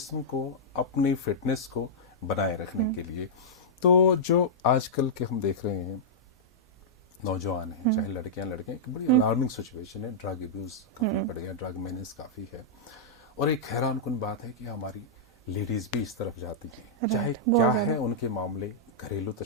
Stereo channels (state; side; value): normal; both; correlation -0.11